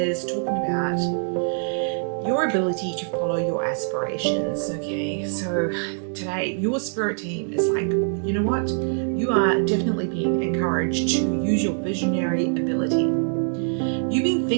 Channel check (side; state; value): left; silent; 63 dB below the other